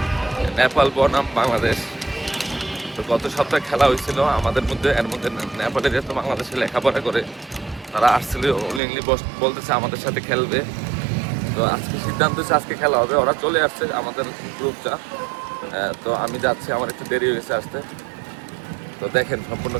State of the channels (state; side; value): drops out; left; at 8.8 s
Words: নেপাল বনাম বাংলাদেশ। তো গত সপ্তাহে খেলা হয়েছিল আমাদের মধ্যে। এর মধ্যে নেপালের যেহেতু বাংলাদেশে লেখাপড়া করে, তারা আসছিল উইলিংলি বলতেছে আমাদের সাথে খেলবে। তো আজকে সিদ্ধান্ত হচ্ছে আজকে খেলা হবে। ওরা চলে আসছে আমাদের গ্রুপটা। তো আমি যাচ্ছি, আমার একটু দেরি হয়েছে আসতে। তো দেখেন, সম্পূর্ণ